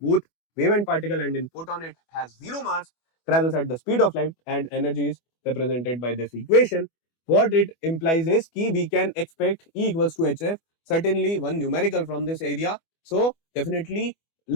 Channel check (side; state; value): right; late; 24 ms